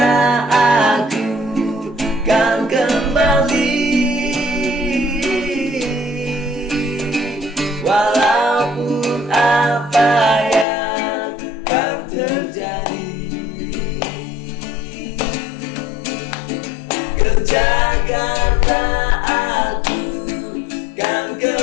aku kan kembali, walaupun apa yang kan terjadi. Ke Jakarta aku kan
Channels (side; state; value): right; drops out; at 10.7 s